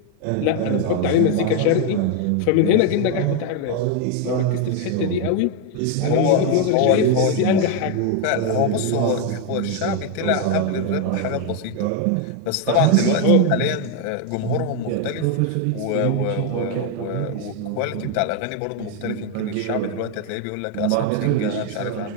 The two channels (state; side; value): different; both; correlation 0.01